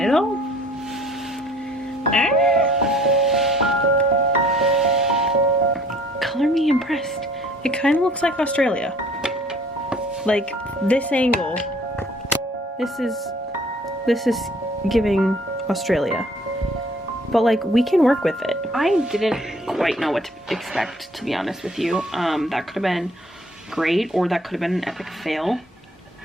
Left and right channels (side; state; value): both; normal; correlation 0.56